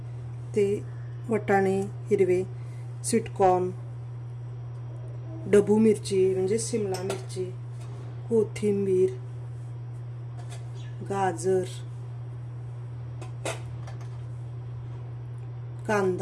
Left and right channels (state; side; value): identical; both; correlation 1.00